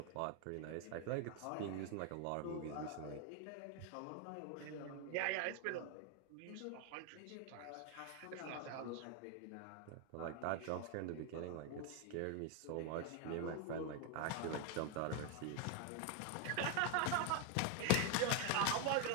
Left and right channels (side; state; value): both; different; correlation 0.01